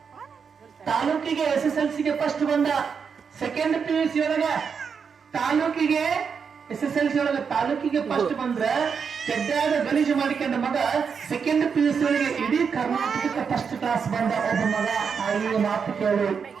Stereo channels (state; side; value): quieter; left; 6.2 dB